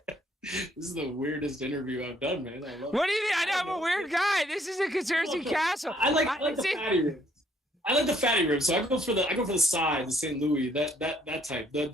This is the weirdest interview I've done, man. I love it. What do you mean? I know I'm a weird guy. This is a conspiracy castle. I like the fatty ribs. I like the fatty ribs, so I go for the side, the St. Louis, that type.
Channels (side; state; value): both; normal; correlation 0.66